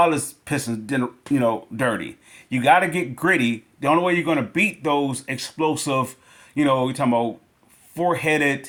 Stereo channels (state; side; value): identical; both; correlation 1.00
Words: Pistons dirty. You got to get gritty. The only way you're going to beat those explosive, you're talking about four-headed